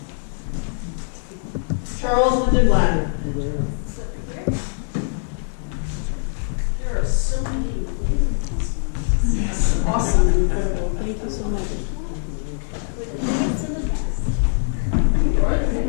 Charles Lindenblatt. There are so many awesome and incredible. Thank you so much.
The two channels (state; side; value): silent; right; 60 dB below the other